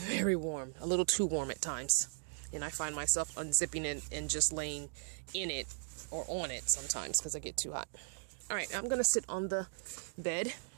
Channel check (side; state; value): left; silent; digital silence